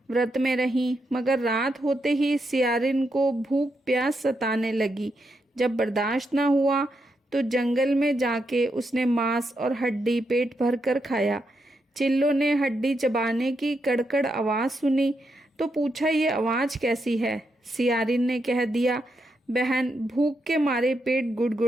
व्रत में रहीं। मगर रात होते ही सियारिन को भूख प्यास सताने लगी। जब बर्दाश्त न हुआ तो जंगल में जाके उसने मांस और हड्डी पेट भर कर खाया। चिल्लो ने हड्डी चबाने की कड़कड़ आवाज़ सुनी तो पूछा, ये आवाज़ कैसी है? सियारिन ने कह दिया, बहन, भूख के मारे पेट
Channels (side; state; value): both; normal; correlation 0.82